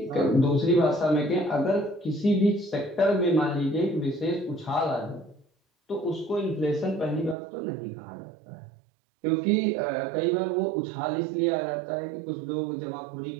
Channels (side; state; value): left; drops out; at 7.4 s